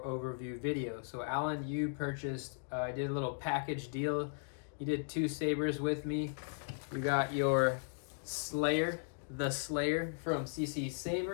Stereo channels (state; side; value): silent; right; digital silence